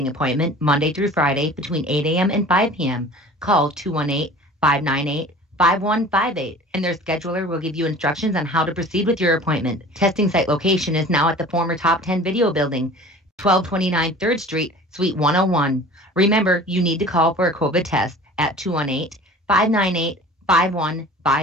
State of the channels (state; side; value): normal; both; correlation 0.43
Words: appointment Monday through Friday between 8 a.m. and 5 p.m. Call 218-598-5158, and their scheduler will give you instructions on how to proceed with your appointment. Testing site location is now at the former Top 10 Video Building, 1229 3rd Street, Suite 101. Remember, you need to call for a COVID test at